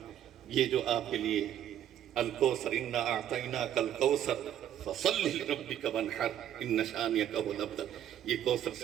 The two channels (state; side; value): quieter; left; 10.7 dB